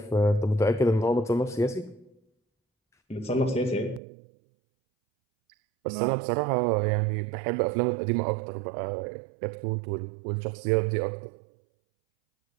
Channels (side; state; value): left; drops out; at 4.0 s